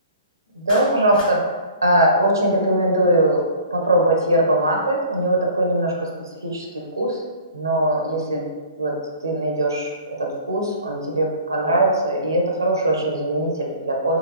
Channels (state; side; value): inverted; both; correlation -0.48